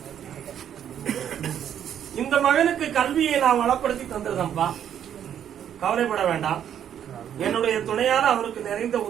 இந்த மகனுக்கு கல்வியை நான் வளப்படுத்தி தந்திருந்தேன்ப்பா, கவலைப்பட வேண்டாம். என்னுடைய துணையால அவருக்கு நிறைந்த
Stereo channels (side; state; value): left; quieter; 9.5 dB